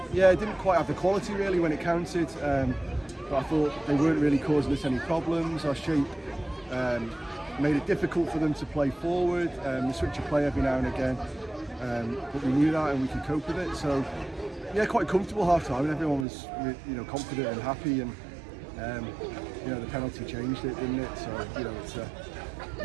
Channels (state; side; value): drops out; left; at 16.2 s